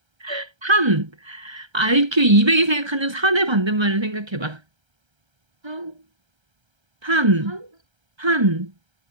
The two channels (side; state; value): left; late; 1.3 ms